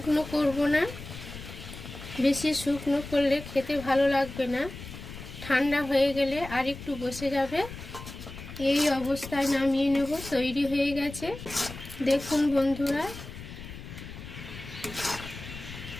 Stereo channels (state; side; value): noise; left; rumble, 12 dB below the sound